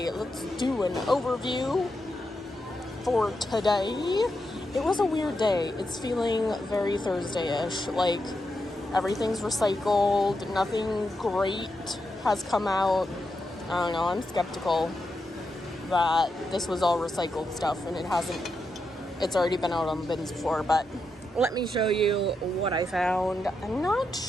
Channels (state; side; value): normal; both; correlation 0.85